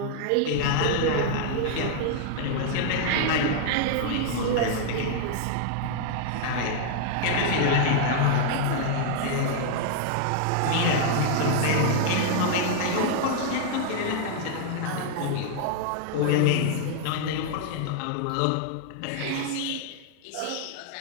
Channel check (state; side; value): different; both; correlation -0.01